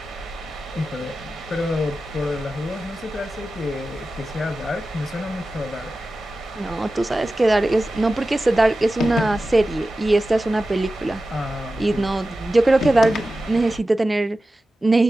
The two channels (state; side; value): normal; both; correlation 0.94